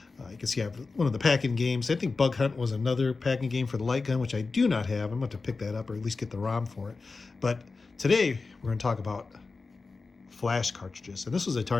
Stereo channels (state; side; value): quieter; right; 4.1 dB